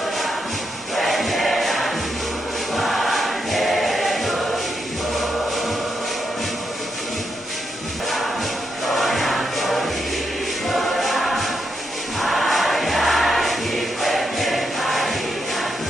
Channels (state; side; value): normal; both; correlation 0.82